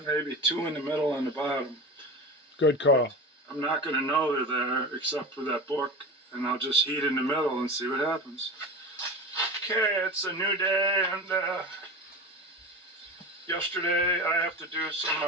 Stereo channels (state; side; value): normal; both; correlation 0.28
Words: maybe 2 in the middle and the bottom. Good call. I'm not going to know they're there except for that book, and I'll just heat in the middle and see what happens. Okay, it's a new day, and yesterday I have to do some